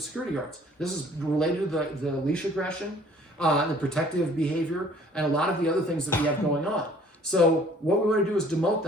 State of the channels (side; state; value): both; normal; correlation 0.55